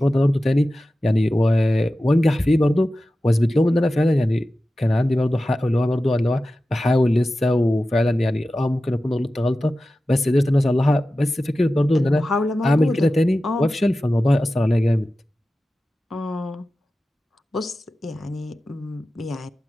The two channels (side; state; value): both; normal; correlation 0.94